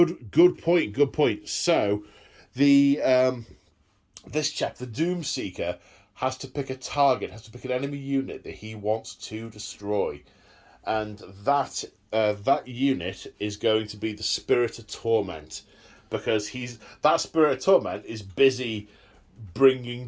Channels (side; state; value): both; identical; correlation 1.00